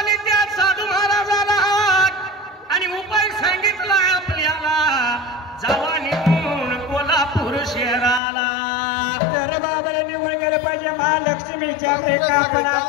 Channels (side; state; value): right; drops out; at 8.2 s